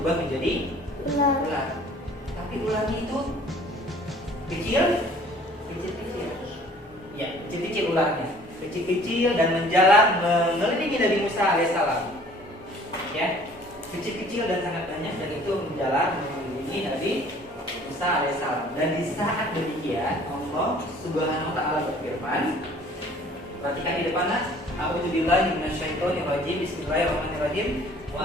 menjadi ular. Tapi ularnya itu kecil. Ya, kecil-kecil ularnya. Kecil-kecil dan menjalar mengelilingi Nabi Musa alaihissalam. Ya, kecil-kecil dan sangat banyak, dan itu menjalar mengelilingi Nabi Musa alaihissalam. Dan di saat demikian Allah Subhanahu wa taala berfirman, perhatikan di depan nas, "A'udzubillahi minasyaitonir rajim. Bismillahirrahmanirrahim.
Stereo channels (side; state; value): both; normal; correlation 0.53